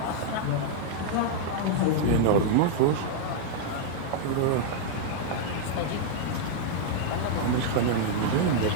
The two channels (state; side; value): different; both; correlation -0.01